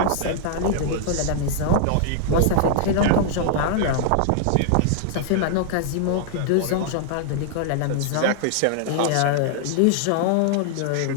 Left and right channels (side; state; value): both; different; correlation -0.01